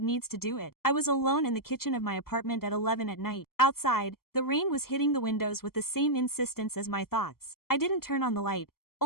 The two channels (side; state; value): right; late; 0.94 ms